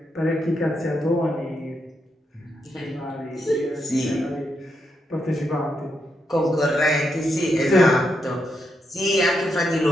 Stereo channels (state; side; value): normal; both; correlation 0.81